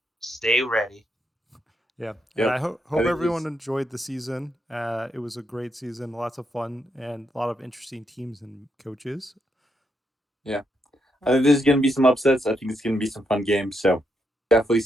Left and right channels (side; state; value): both; normal; correlation 0.80